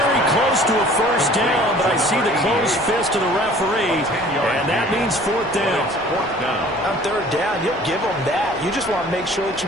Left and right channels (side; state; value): right; noise; rumble, 22 dB below the sound